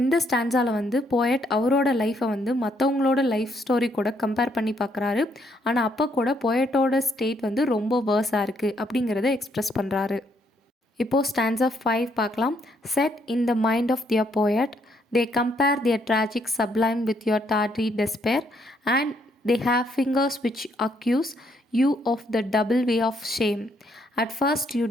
ஸ்டான்ஸால் வந்து போயட் அவரோட லைஃப்பை வந்து மற்றவங்களோட லைஃப் ஸ்டோரி கூட கம்பேர் பண்ணி பார்க்குறாரு. ஆனால் அப்போ கூட போயட்டோட ஸ்டேட் வந்து ரொம்ப வேர்ஸாக இருக்குது அப்படிங்கிறத எக்ஸ்ப்ரெஸ் பண்ணுறாரு. இப்போது ஸ்டான்ஸா 5 பார்க்கலாம். Set in the mind of their poet, they compare their tragic sublime with your tawdry despair and they have fingers which accuse you of the double way of shame. At first you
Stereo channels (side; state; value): both; normal; correlation 0.72